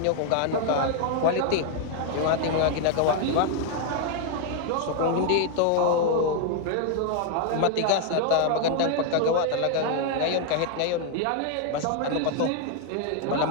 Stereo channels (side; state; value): both; different; correlation 0.00